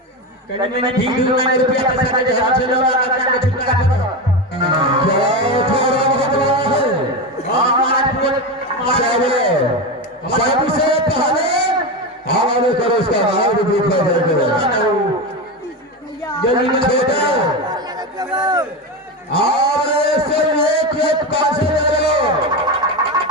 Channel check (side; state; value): both; normal; correlation 0.17